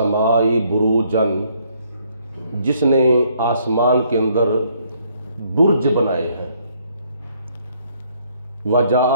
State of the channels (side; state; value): both; inverted; correlation -0.67